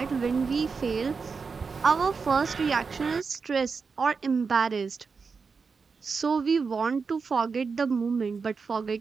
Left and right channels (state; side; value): quieter; left; 5.1 dB